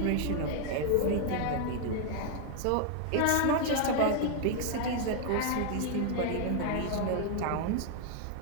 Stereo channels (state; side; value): different; both; correlation 0.00